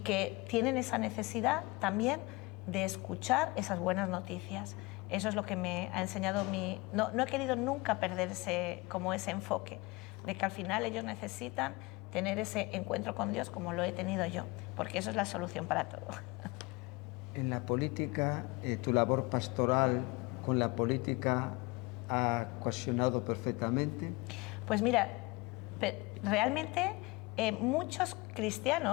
que tienen esa necesidad también de escuchar esas buenas noticias. Eso es lo que me ha enseñado mi... No he querido nunca perder ese enfoque, de que al final ellos necesitan tener ese encuentro con Dios como lo he tenido yo, porque eso es la solución para todo. En la política, tu labor pastoral con la política ha cohesionado perfectamente. Pues mira, realmente muchos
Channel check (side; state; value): right; quieter; 24.5 dB